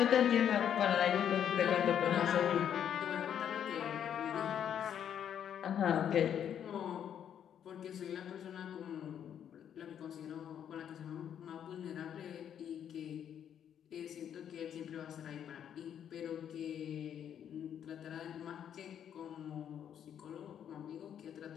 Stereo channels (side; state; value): right; quieter; 9.2 dB